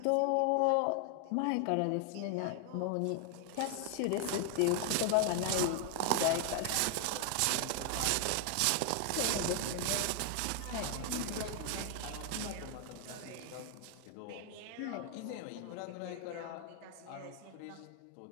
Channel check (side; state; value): both; different; correlation 0.00